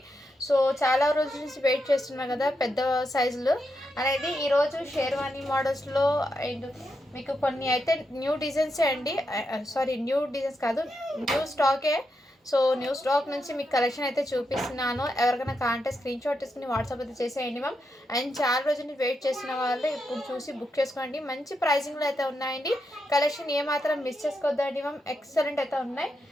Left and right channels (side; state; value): both; normal; correlation 0.84